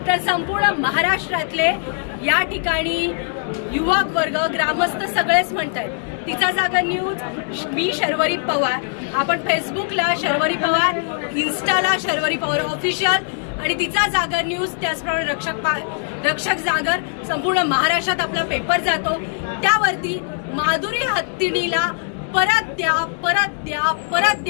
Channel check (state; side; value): silent; right; 65 dB below the other